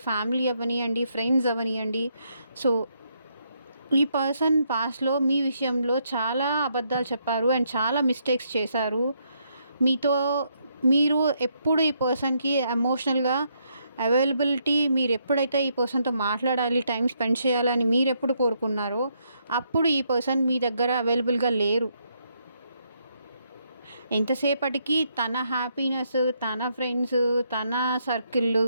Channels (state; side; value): inverted; both; correlation -0.75